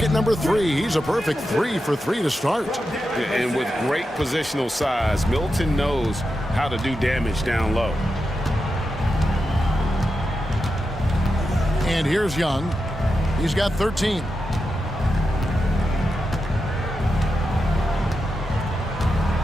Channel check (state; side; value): normal; both; correlation 0.89